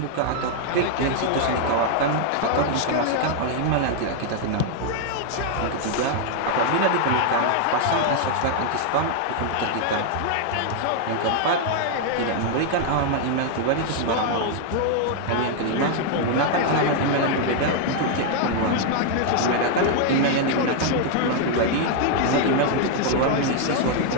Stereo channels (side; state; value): both; different; correlation 0.00